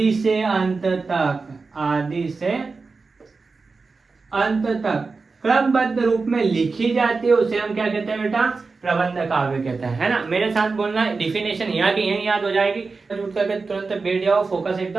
से अंत तक, आदि से अंत तक क्रमबद्ध रूप में लिखी जाती है, उसे हम क्या कहते हैं बेटा? प्रबंध काव्य कहते हैं, है ना। मेरे साथ बोलना, डिफिनेशन यहाँ की यही याद हो जाएगी। उठ करके तुरंत बैठ जाओ, फोकस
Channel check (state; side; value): quieter; left; 4.2 dB